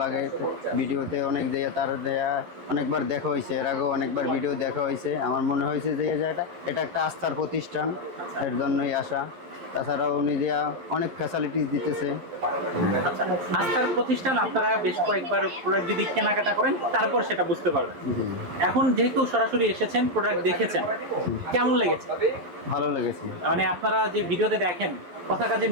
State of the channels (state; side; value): late; left; 11 ms